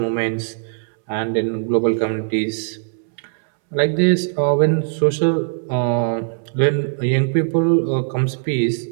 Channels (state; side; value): silent; left; 64 dB below the other